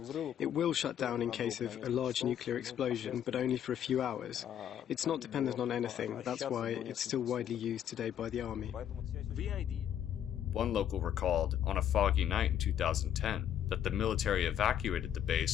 It will shut down in case of a large nuclear explosion, but only for a few hours. It's not dependent on anything. That's why it's still widely used today by the army. One local recalled, on a foggy night in 2010, that the military evacuated the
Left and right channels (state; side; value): quieter; right; 10.0 dB